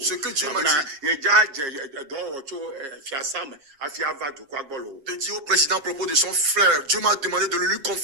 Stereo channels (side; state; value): left; late; 7.3 ms